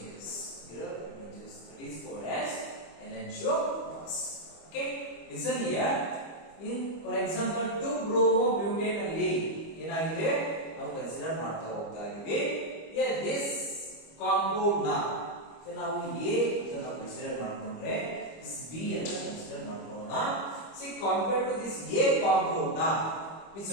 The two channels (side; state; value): right; late; 25 ms